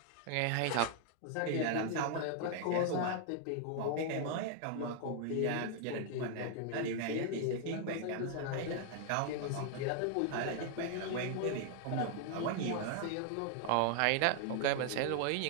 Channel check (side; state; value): both; different; correlation 0.00